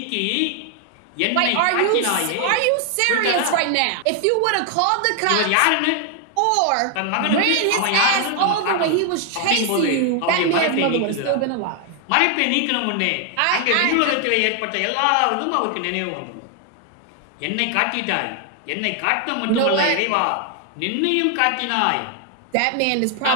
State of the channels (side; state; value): both; different; correlation 0.00